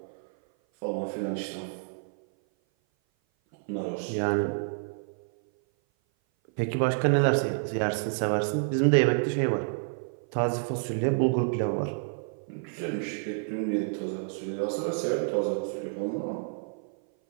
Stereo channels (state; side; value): silent; left; 56 dB below the other